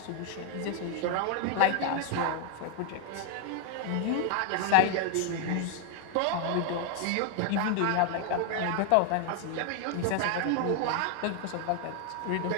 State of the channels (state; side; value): different; both; correlation 0.01